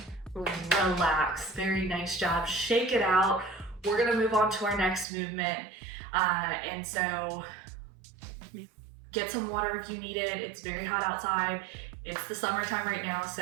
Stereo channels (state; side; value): drops out; left; at 5.1 s